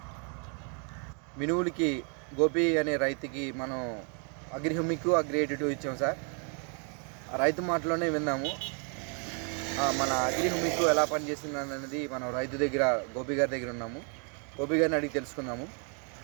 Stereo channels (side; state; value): left; quieter; 39.0 dB